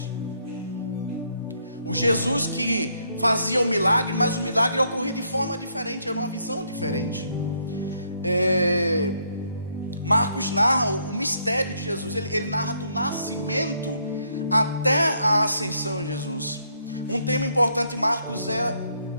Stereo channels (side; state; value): both; inverted; correlation -0.72